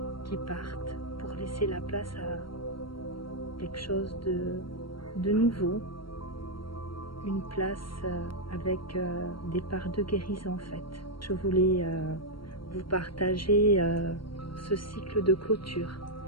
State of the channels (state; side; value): late; right; 0.73 ms